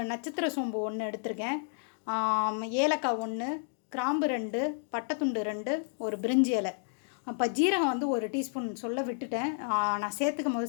நட்சத்திர சோம்பு 1 எடுத்திருக்கேன், ஏலக்காய் 1, கிராம்பு 2, பட்டைத்துண்டு 2, ஒரு பிரிஞ்சி இலை. அப்போ ஜீரகம் வந்து ஒரு டீஸ்பூன் சொல்ல விட்டுட்டேன், நான் சேர்த்துக்கும் போது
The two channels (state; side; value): silent; right; digital silence